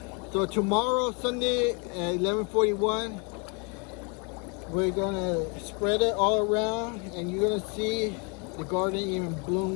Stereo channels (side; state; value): right; quieter; 34.4 dB